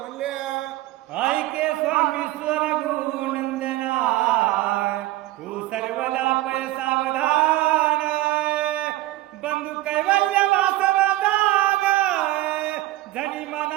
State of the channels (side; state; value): left; quieter; 17.0 dB